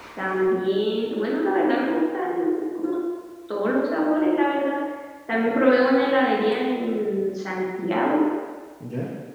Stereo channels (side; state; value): both; identical; correlation 1.00